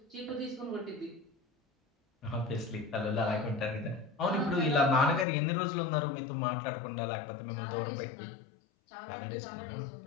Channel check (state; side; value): drops out; right; at 5.2 s